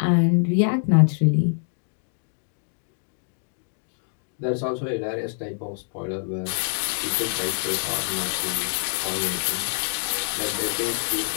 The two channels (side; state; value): right; silent; digital silence